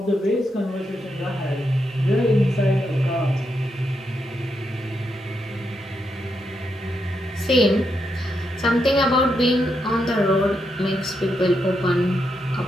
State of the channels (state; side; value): normal; both; correlation 0.82